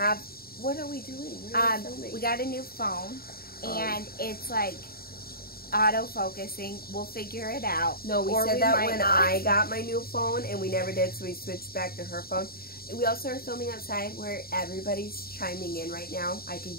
What are we doing? What are we filming? We got a new phone, and it's like auto-focusing. We'll figure it out. No, we said that when I got my new phone, and we never did, so we switched back to her phone. We also are filming outside where everybody's chiming in right now. I can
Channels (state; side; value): late; right; 0.44 ms